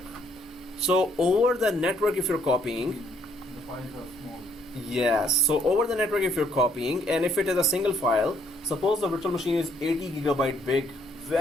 So over the network, if you're copying, The files are small. yes, so over the network if you're copying, and if it is a single file, suppose the virtual machine is 80 gigabyte big,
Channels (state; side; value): normal; both; correlation 0.68